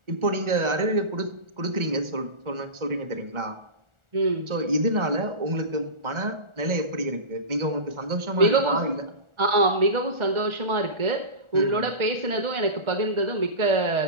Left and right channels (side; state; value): left; late; 1.4 ms